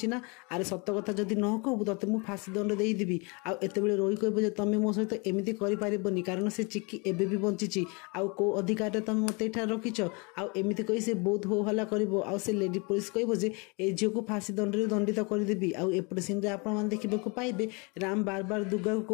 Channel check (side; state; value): right; quieter; 30.6 dB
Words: ना अरे सत कथा जदि न कहू ते मुझे फाँसी दंड देदेवी आतेबले रोही कह तुम मो सहित एमती करनी कारण से चिकी एबे भी बंची आउ कौ अधिकार तुम मत एठार रखिछ आमती कही से बहुत हो हल्ला कर से लेडी पुलिस कह ए झील को फाँसी दंड दंडित करदेवी आउटे सीन में देखा पाइबे राम बार बार दुर्गा